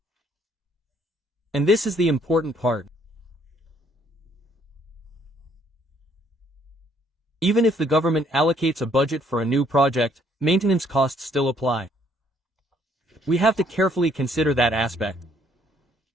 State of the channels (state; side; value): normal; both; correlation 0.66